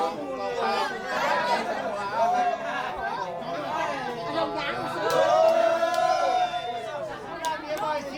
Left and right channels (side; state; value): both; identical; correlation 1.00